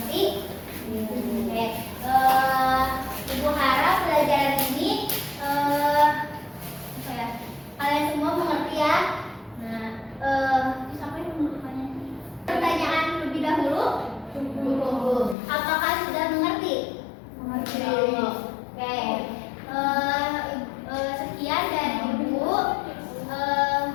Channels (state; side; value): drops out; right; at 15.4 s